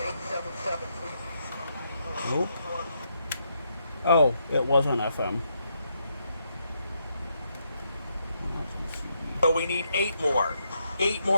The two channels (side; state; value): both; inverted; correlation -0.78